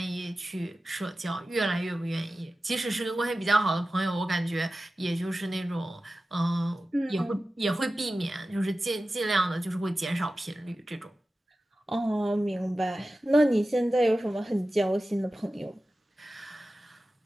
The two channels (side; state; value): both; normal; correlation 0.95